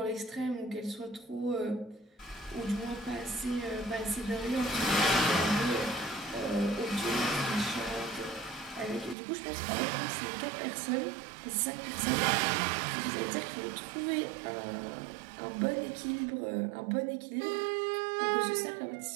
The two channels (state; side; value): drops out; left; at 9.2 s